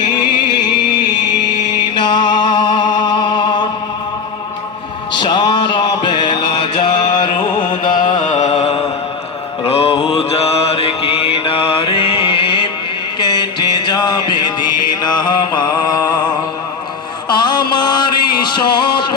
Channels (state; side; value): quieter; right; 5.3 dB